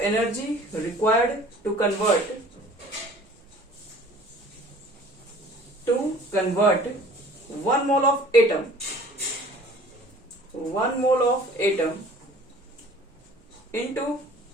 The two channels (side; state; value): both; normal; correlation 0.49